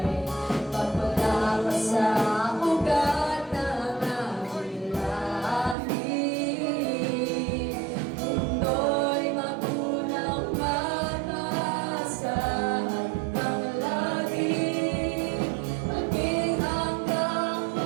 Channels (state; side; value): drops out; left; at 5.8 s